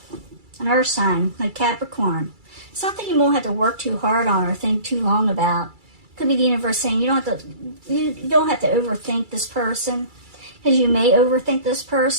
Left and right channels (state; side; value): late; left; 2.3 ms